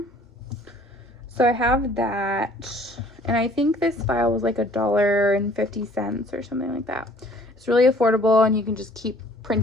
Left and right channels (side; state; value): both; normal; correlation 0.55